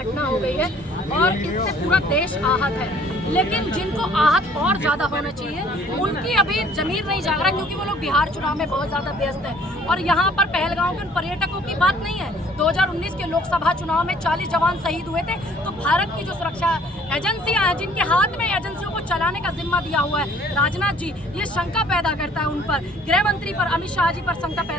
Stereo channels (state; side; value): normal; both; correlation 0.56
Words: हो गई है और इससे पूरा देश आहत है। लेकिन जिनको आहत और ज्यादा होना चाहिए उनकी अभी जमीर नहीं जाग रहा, क्योंकि वो लोग बिहार चुनाव में बहुत ज्यादा व्यस्त है और यहाँ पर पहलगाम के उन पर्यटकों की बात नहीं है। 2019 के लोकसभा चुनाव में 40 जवान शहीद हुए थे, तो भारत की जो सुरक्षा एजेंसियां हैं जिनके हाथ में एजेंसियों को चलाने का जिम्मा दिया हुआ है राजनाथ जी, ये शंका पैदा करता है उन पर, गृह मंत्री पर, अमित शाह जी पर शंका